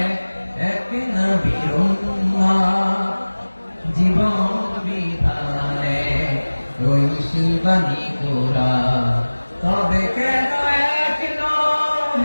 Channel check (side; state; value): both; inverted; correlation -1.00